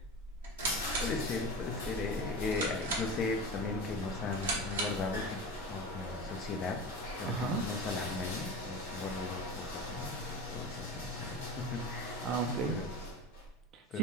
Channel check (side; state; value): both; normal; correlation 0.30